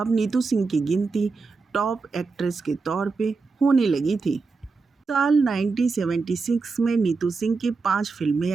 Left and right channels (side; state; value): left; quieter; 4.3 dB